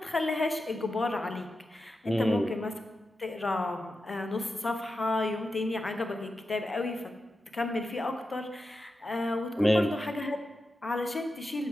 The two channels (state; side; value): normal; both; correlation 0.90